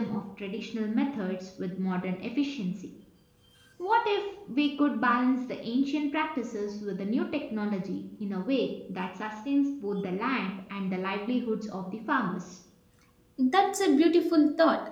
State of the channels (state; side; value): identical; both; correlation 1.00